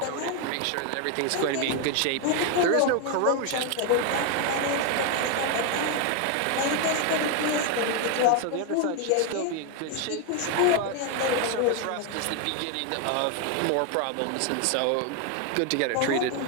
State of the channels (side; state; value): both; different; correlation 0.01